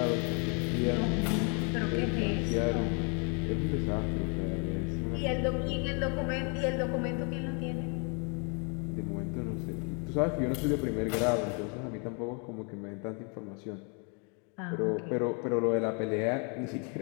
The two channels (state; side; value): quieter; right; 36.5 dB